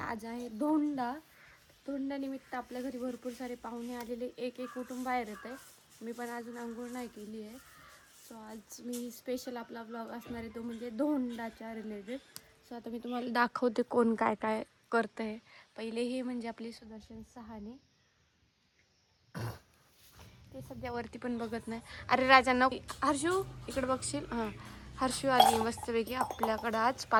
आहे धोंडानिमित्त आपल्या घरी भरपूर सारे पाहुणे आलेले. एक कुटुंब बाहेर येत आहे. मी पण अजून अंघोळ नाही केली आहे. सो आज मी स्पेशल आपला ब्लॉग असणार आहे, तो म्हणजे धोंडाच्या रिलेटेड. सो आता मी तुम्हाला दाखवते कोण काय काय करतं आहे. पहिले हे म्हणजे आपले सुदर्शन सहाने, ते सध्या वरती पण बघत नाही. अरे राजांना, हर्षू इकडे बघशील. हां, हर्षू आली मस्तपैकी आपल्याकडं आज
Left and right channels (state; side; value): identical; both; correlation 1.00